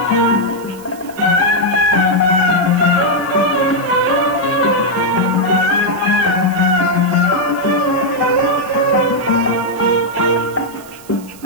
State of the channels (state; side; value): noise; right; hiss, 21 dB below the sound